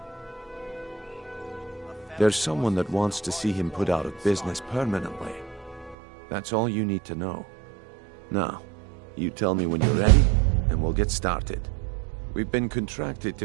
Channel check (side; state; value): left; drops out; at 6.0 s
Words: There's someone that wants to see him put out of business permanently. That's all you need to know. Now, you tell me when you're ready, and we'll get started. We've been contracted to